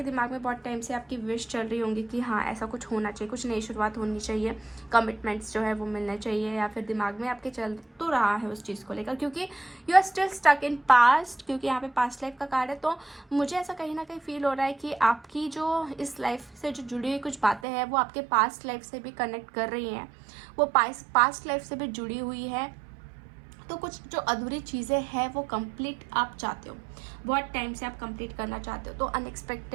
दिमाग में बहुत टाइम से आपकी विश चल रही होंगी कि हाँ ऐसा कुछ होना चाहिए, कुछ नई शुरुआत होनी चाहिए, कमिटमेंट्स जो है वो मिलने चाहिए, या फिर दिमाग में आपके चल तो रहा है उस चीज़ को लेकर, क्योंकि you are still stuck in past, क्योंकि यहाँ पे पास्ट लाइफ का कार्ड है। तो मुझे ऐसा कहीं ना कहीं फील हो रहा है कि आपकी जो इस लाइफ से जो जुड़ी हुई कुछ बातें हैं वो आपके पास्ट लाइफ से भी कनेक्ट कर रही हैं, वो पास्ट लाइफ से भी जुड़ी हुई है। तो कुछ जो अधूरी चीज़ें हैं वो कंप्लीट आप चाहते हो, बहुत टाइम से आप कंप्लीट करना चाहते हो। तो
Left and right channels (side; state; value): left; drops out; at 17.6 s